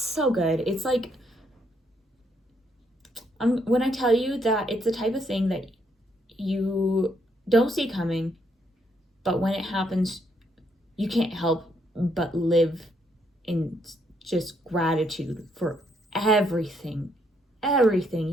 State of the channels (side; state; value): both; normal; correlation 0.73